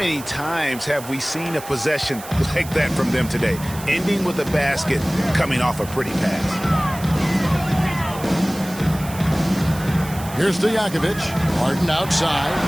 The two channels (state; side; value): noise; right; hiss, 15 dB below the sound